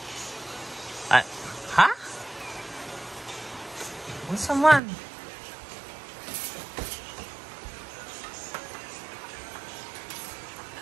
Ah, ha? Unsa man?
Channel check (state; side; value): drops out; left; at 4.8 s